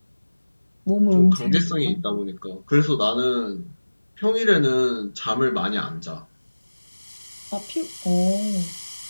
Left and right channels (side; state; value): both; inverted; correlation -1.00